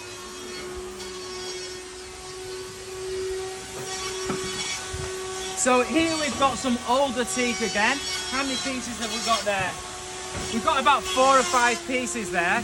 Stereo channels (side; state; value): both; identical; correlation 1.00